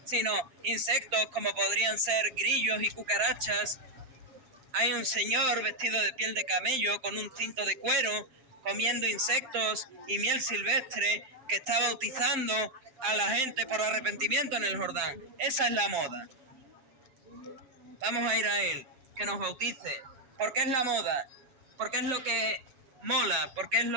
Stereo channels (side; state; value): left; late; 7.6 ms